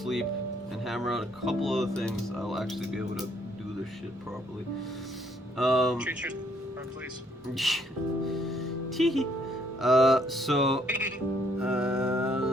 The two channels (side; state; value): both; normal; correlation 0.67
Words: and hammer out a couple other things, I'll actually be able to do this shit properly. Treat yourself, please. Tee. So